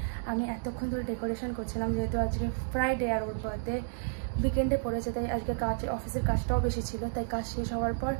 আমি এতক্ষণ ধরে ডেকোরেশন করছিলাম, যেহেতু আজকে ফ্রাইডে আর ওর বার্থডে উইকেন্ডে পড়েছে, তাই আজকে অফিসের কাজটাও বেশি ছিল, তাই কাজ শেষ হওয়ার পর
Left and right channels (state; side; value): silent; left; digital silence